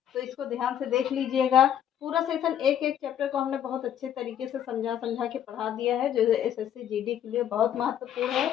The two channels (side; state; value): right; quieter; 10.1 dB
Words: तो इसको ध्यान से देख लीजिएगा। पूरा सेशन एक एक चैप्टर को हमने बहुत अच्छे तरीके से समझा समझा के पढ़ा दिया है, जो एसएससी जीडी के लिए बहुत महत्वपूर्ण है।